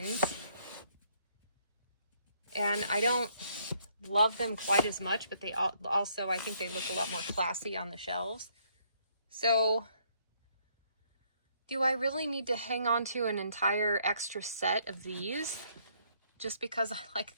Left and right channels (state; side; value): inverted; both; correlation -0.68